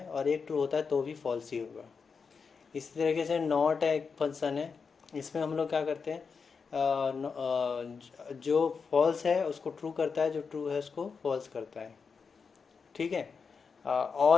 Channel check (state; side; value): quieter; right; 5.4 dB